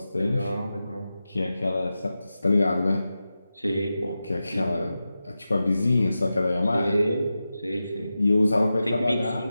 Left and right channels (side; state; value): both; inverted; correlation -0.92